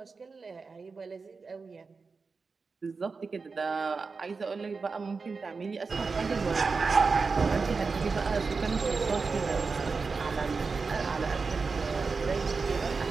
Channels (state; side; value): quieter; left; 4.6 dB